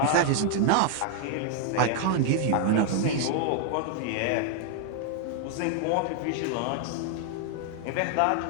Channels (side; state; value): both; different; correlation 0.00